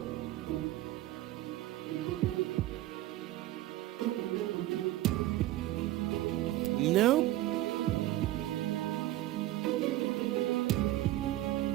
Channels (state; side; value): quieter; left; 15.6 dB